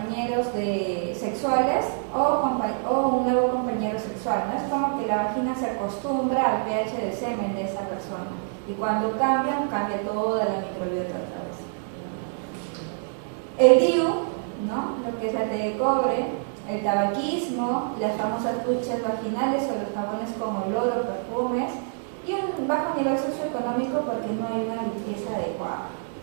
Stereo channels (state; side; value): silent; left; digital silence